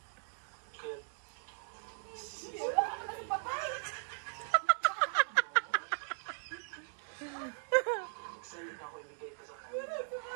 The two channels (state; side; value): silent; left; digital silence